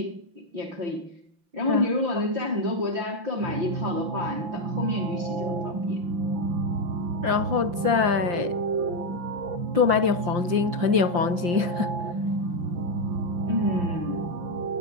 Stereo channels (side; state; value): left; late; 5.8 ms